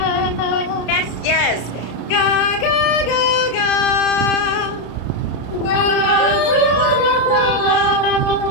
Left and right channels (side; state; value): right; late; 33 ms